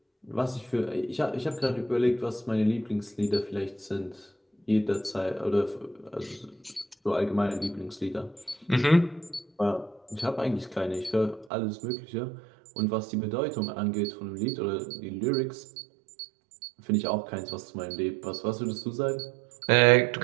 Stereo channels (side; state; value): left; drops out; at 11.5 s